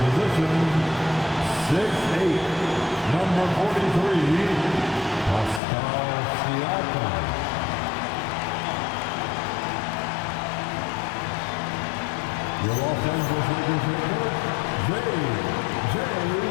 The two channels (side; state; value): right; drops out; at 5.6 s